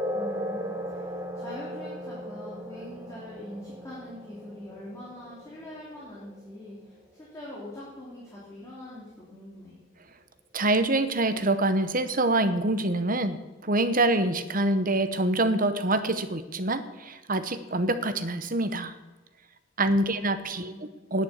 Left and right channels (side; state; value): both; normal; correlation 0.27